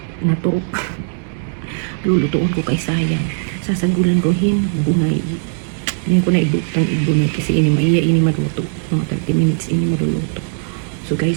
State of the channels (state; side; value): silent; left; digital silence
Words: naturok. Lulutuon ko kay sayang. Sasagulan ko bunay. Hindi ko na ibutang ibunay kasi ini maluto. Mga 30 minutes ini maluluto. So